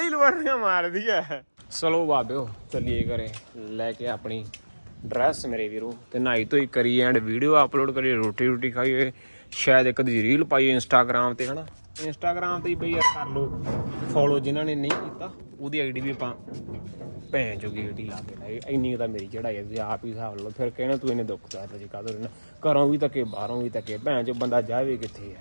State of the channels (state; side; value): inverted; both; correlation -1.00